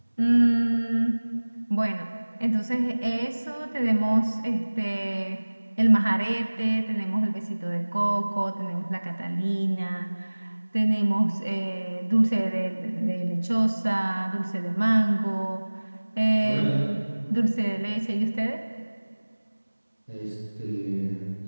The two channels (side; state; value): both; inverted; correlation -1.00